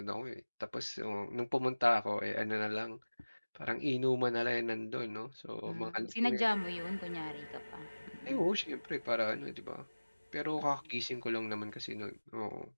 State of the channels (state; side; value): inverted; both; correlation -1.00